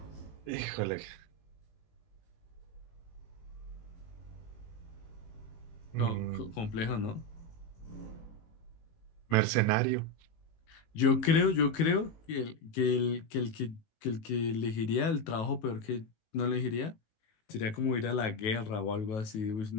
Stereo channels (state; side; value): late; right; 19 ms